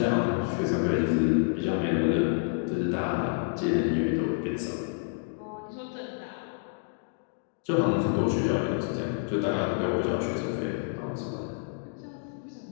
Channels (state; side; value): silent; right; digital silence